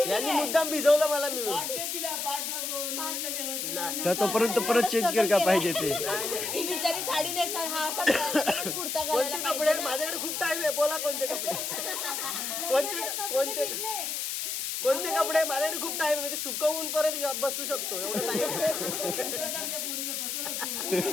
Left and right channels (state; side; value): noise; left; hiss, 2 dB below the sound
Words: यांनी मुद्दाम भिजवलं मला मिळून. तर तोपर्यंत परत चेंज कर का पाहिजे ते. ही बिचारी साडी नेसणार, हा असा कुर्ता कोणते घालायला कपडे? माझ्याकडे खूप टाइम आहे, बोला कोणते कपडे? कोणते कोणते कपडे? माझ्याकडे खूप टाइम आहे, मी ते सुकवून परत बसू शकतो एवढं टाइम.